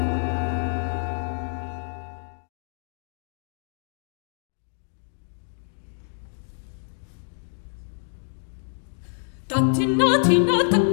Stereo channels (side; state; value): right; silent; digital silence